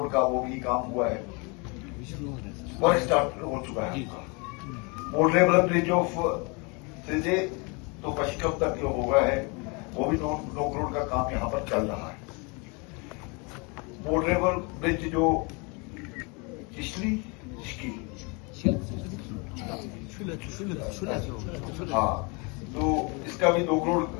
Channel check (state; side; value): quieter; right; 30.7 dB